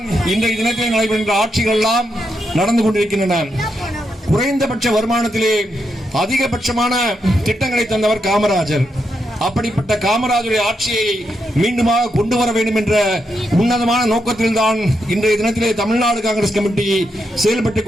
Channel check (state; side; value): normal; both; correlation 0.82